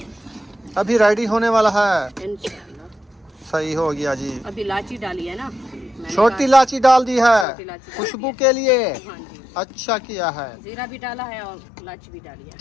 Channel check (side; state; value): right; drops out; at 7.5 s